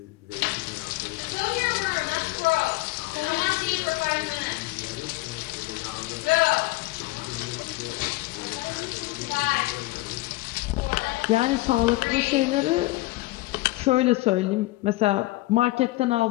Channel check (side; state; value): right; quieter; 20.4 dB